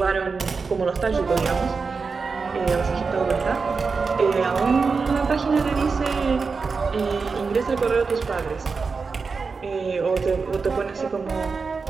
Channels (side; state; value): left; quieter; 4.8 dB